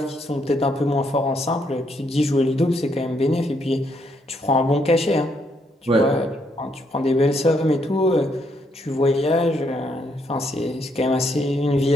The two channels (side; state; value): both; normal; correlation 0.74